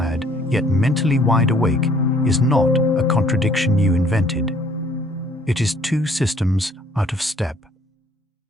yet mentally wide awake is not a contradiction you invented. It is two systems out of step.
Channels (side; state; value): both; normal; correlation 0.59